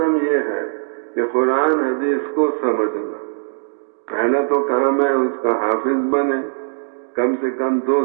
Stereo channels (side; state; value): left; silent; 66 dB below the other